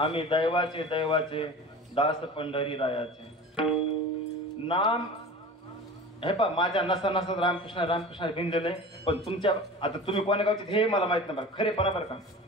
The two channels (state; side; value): normal; both; correlation 0.36